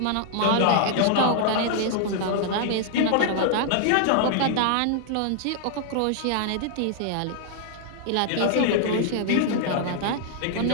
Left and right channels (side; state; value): both; different; correlation -0.01